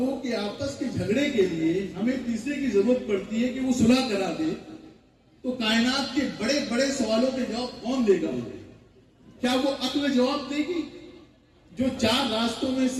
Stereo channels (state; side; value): identical; both; correlation 1.00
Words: کے آپس کے جھگڑے کے لیے ہمیں تیسرے کی ضرورت پڑتی ہے کہ وہ صلح کرا دے، تو کائنات کے بڑے بڑے سوالوں کے جواب کون دے گا؟ کیا وہ عقل جواب دے گی جو 4 راستوں میں